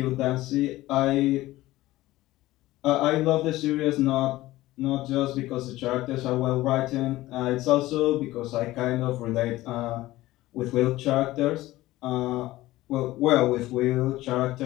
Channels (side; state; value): right; quieter; 17.1 dB